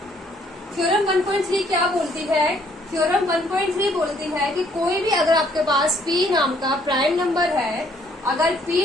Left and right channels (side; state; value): both; normal; correlation 0.65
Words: थ्योरम 1.3 क्या बोलती है? थ्योरम 1.3 बोलती है कि कोई भी अगर आपके पास p नाम का प्राइम नंबर है, अगर